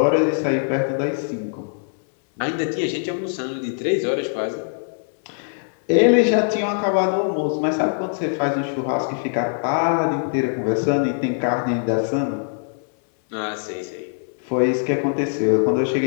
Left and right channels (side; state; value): right; silent; 64 dB below the other